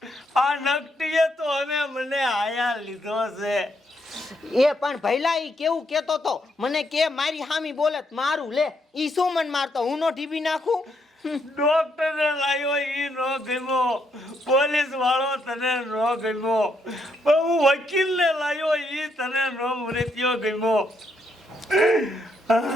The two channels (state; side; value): normal; both; correlation 0.76